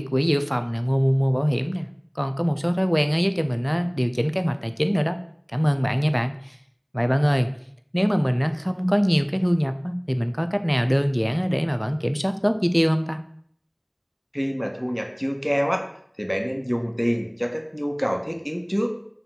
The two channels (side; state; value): both; identical; correlation 1.00